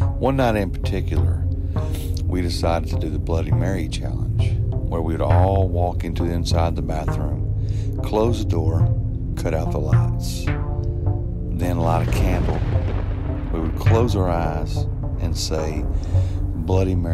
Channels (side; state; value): both; identical; correlation 1.00